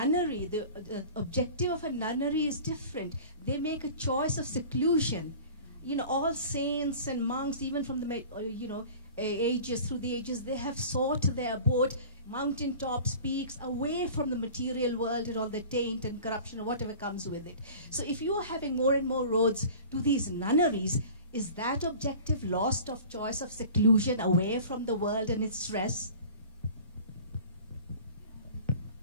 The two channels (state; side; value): inverted; both; correlation -0.42